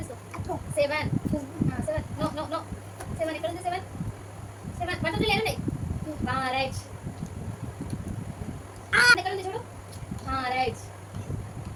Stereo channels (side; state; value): both; identical; correlation 1.00